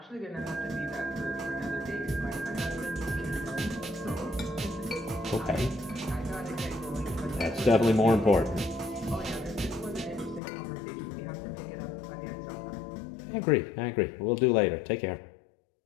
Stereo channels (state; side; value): drops out; right; at 10.4 s